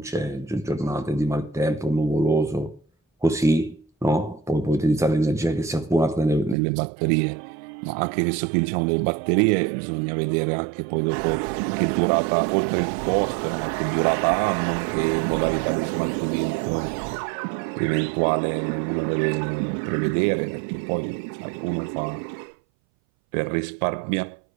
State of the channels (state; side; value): drops out; left; at 6.6 s